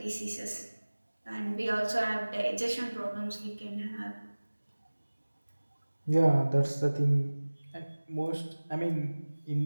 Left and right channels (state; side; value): inverted; both; correlation -1.00